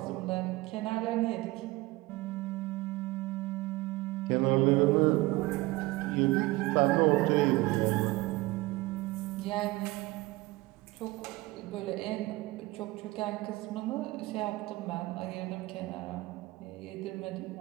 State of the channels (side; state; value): left; quieter; 20.6 dB